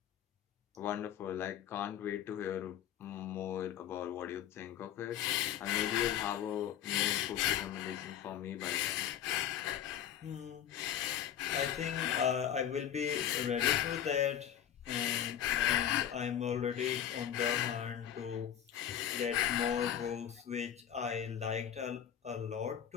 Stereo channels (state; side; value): quieter; right; 10.0 dB